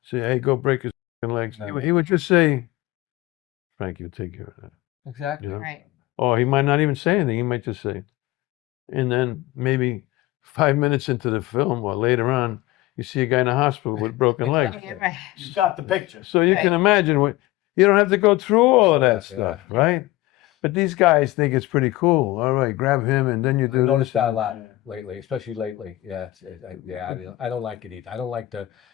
say, hey, go break his legs? No. He would just say, Frank, you take care of that. Exactly. You know? Right. Or he might not even say anything. He might just say. And then maybe 5 minutes into the film or later on, you see a guy in the hospital with broken legs. Yeah, right. You got the picture. So you can imagine you don't have to go through all of that stuff, right? But these guys think it's pretty cool. All right, grab him, and then you do. I noticed that a lot lately, especially lately. Yeah, I don't like it either. I don't like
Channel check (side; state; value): right; quieter; 17.9 dB